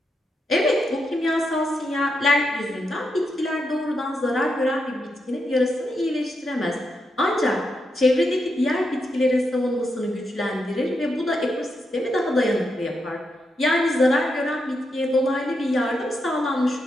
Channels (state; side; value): normal; both; correlation 0.84